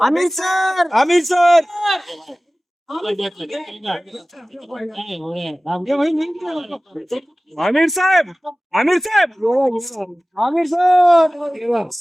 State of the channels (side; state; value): both; normal; correlation 0.97